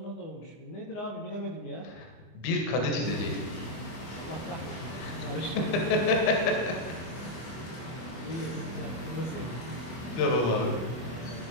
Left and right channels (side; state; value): right; late; 24 ms